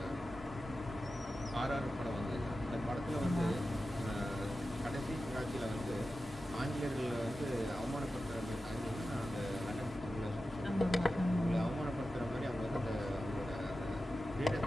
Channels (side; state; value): both; normal; correlation 0.93